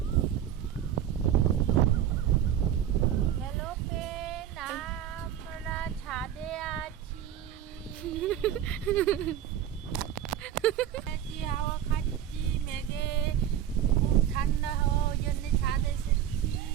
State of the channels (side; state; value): left; quieter; 10.5 dB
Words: আমরা ছাদে আছি, হাওয়া খাচ্ছি। মেঘে খুব ঠান্ডা হাওয়া, ওই জন্য ছাদে এসেছি।